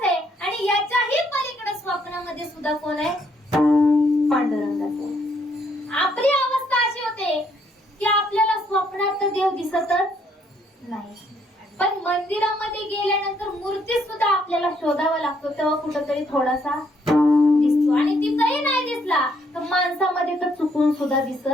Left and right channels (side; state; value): both; normal; correlation 0.70